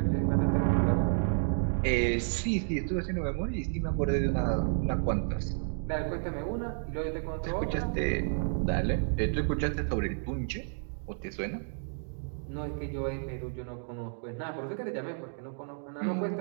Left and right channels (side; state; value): left; silent; 57 dB below the other